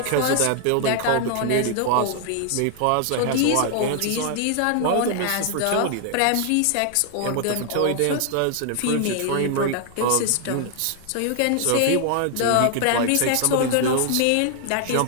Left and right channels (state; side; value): different; both; correlation 0.00